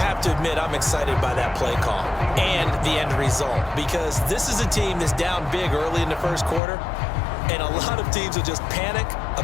to admit, I'm excited by that play call and the end result because this is a team that's down big early in the first quarter. And a lot of teams will just panic,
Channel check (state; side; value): drops out; right; at 6.6 s